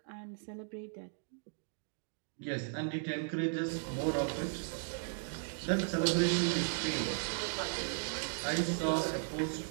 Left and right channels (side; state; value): left; silent; digital silence